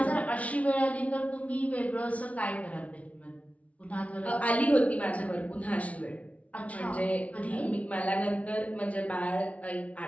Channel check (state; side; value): late; right; 0.066 ms